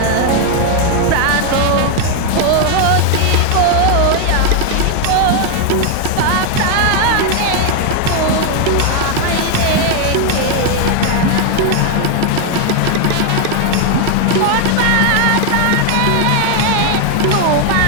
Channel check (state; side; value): different; both; correlation 0.00